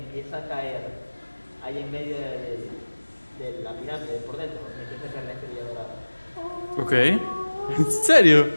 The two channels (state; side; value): inverted; both; correlation -1.00